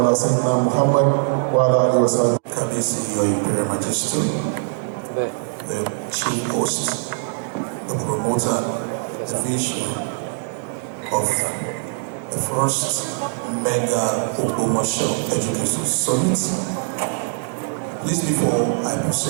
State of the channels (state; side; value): silent; left; digital silence